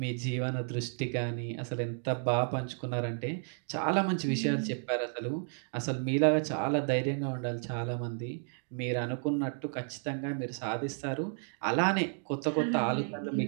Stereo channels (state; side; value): silent; left; 56 dB below the other